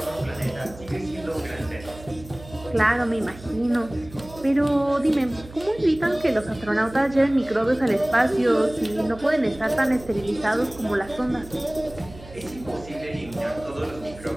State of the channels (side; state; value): right; noise; hum, 18 dB below the sound